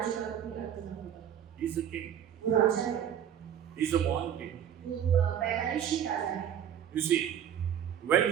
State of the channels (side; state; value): left; quieter; 9.4 dB